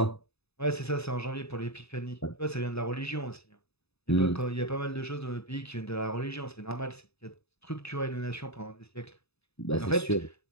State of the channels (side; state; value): right; late; 0.79 ms